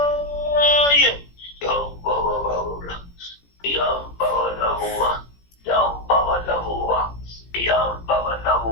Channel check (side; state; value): right; late; 17 ms